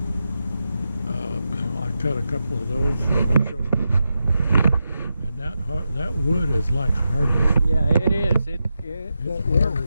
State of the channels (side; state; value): both; inverted; correlation -0.88